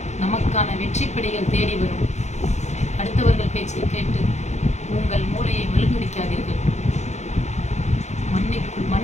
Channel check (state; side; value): late; right; 0.33 ms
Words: நமக்கான வெற்றிப்படிகள் தேடி வரும். அடுத்தவர்கள் பேச்சை கேட்டு உங்கள் மூளையை மழுங்கடிக்காதீர்கள்.